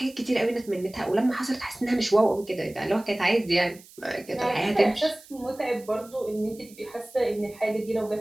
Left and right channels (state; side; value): noise; right; hiss, 23 dB below the sound